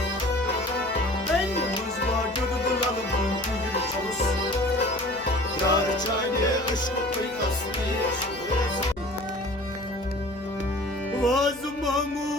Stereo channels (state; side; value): noise; left; hum, 20 dB below the sound